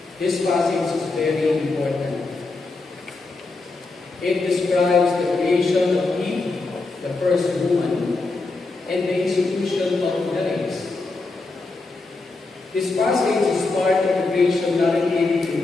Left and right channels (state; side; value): quieter; right; 3.5 dB